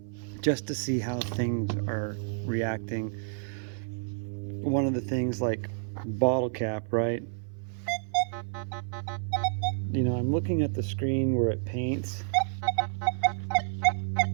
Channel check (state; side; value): silent; left; 55 dB below the other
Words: just to see how things are reacting. One of the things like bottle cap, right? I'm looking at the screen where it paints